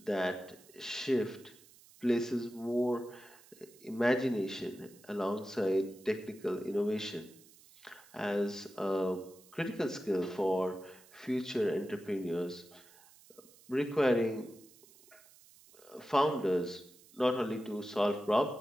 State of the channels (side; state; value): right; noise; hiss, 24 dB below the sound